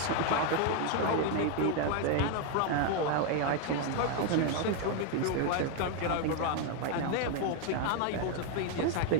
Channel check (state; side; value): different; both; correlation 0.01